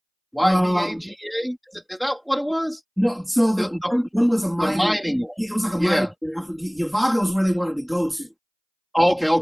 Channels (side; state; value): both; identical; correlation 1.00